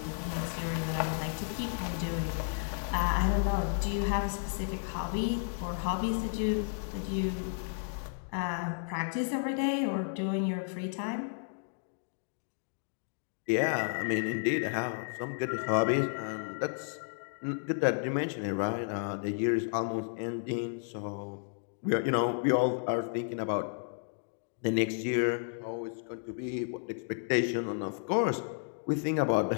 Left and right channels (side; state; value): right; silent; digital silence